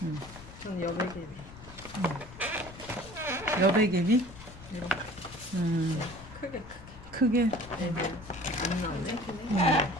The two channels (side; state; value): left; noise; rumble, 17 dB below the sound